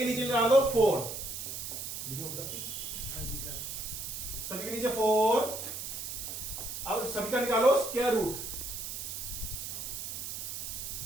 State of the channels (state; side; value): noise; right; hiss, 6 dB below the sound